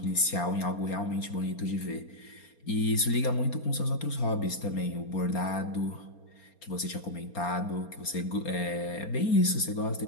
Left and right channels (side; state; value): right; late; 4.3 ms